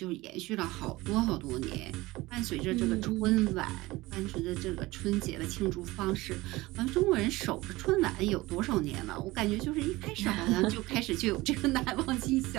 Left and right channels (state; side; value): quieter; left; 20.0 dB